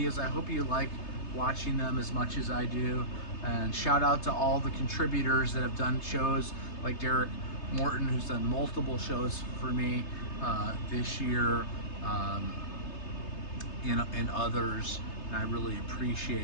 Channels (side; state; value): right; late; 3.3 ms